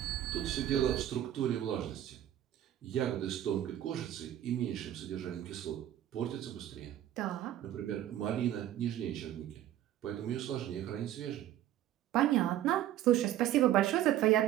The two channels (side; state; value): left; quieter; 12.3 dB